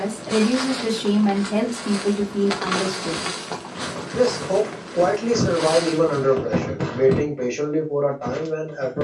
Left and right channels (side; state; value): both; identical; correlation 1.00